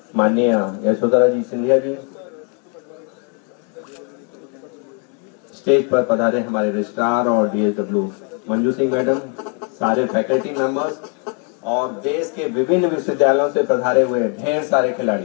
माननीय यशोधरा जी सिंधिया जी, स्टेज पर पधारे हमारे रजिस्ट्रार और डीएसडब्ल्यू मंजू सिंह मैडम, सारे फैकल्टी मेंबर्स और देश के विभिन्न विश्वविद्यालयों से पधारे हुए ढेर सारे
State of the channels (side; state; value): right; quieter; 38.4 dB